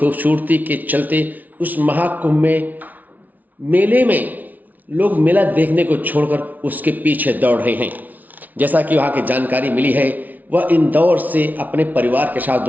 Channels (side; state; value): left; late; 0.077 ms